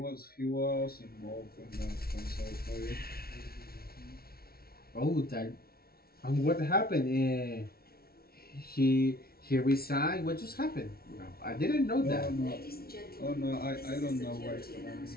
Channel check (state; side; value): late; right; 0.44 ms